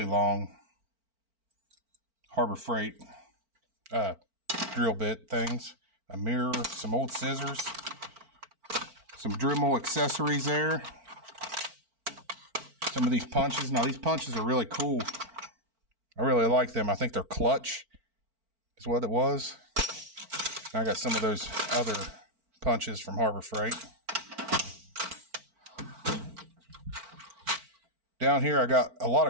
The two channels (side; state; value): left; late; 4.4 ms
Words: long Harbor Freight drill bit things. A mirror, some old scissors. Some Dremel accessories there. Some of these punches. Now, these punches are really cool. I really like them. I think they're clutch is what it was. And I got some of those other punches from Harbor Freight. Down here, I got a lot